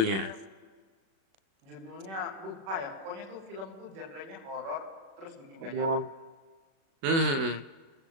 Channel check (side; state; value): left; late; 36 ms